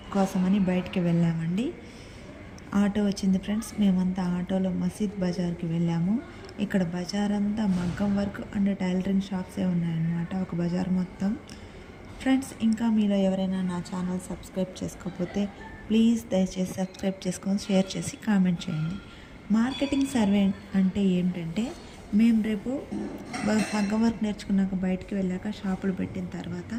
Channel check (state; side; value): identical; both; correlation 1.00